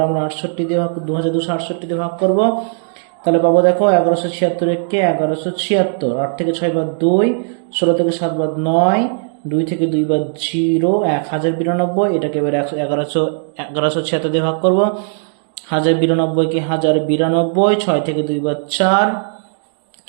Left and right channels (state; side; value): silent; left; digital silence